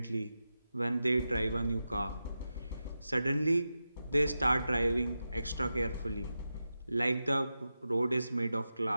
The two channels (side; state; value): both; inverted; correlation -0.91